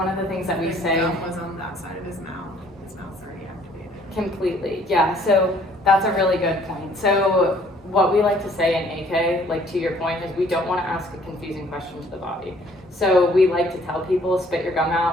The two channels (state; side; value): normal; both; correlation 0.60